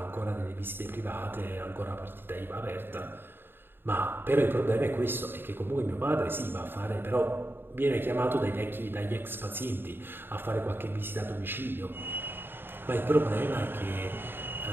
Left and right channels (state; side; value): late; left; 0.10 ms